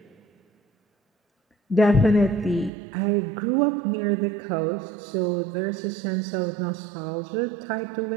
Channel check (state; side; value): drops out; left; at 2.7 s